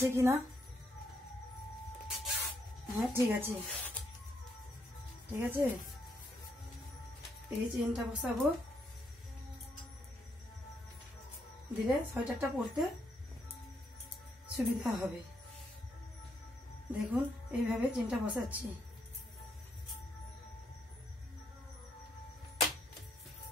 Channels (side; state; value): both; normal; correlation 0.76